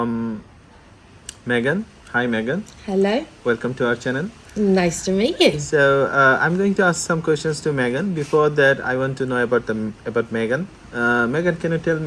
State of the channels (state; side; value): identical; both; correlation 1.00